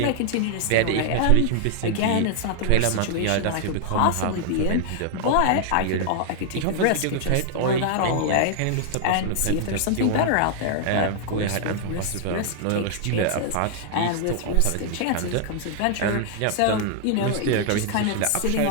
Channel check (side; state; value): both; different; correlation -0.01